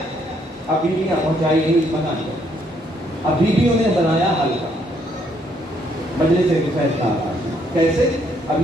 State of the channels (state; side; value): normal; both; correlation 0.70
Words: اب بیویاں پہنچائی نہیں اس مکان کو، اب بیویوں نے بنایا حلقہ، مجلس سے فیصلہ آتا کیسے؟ اب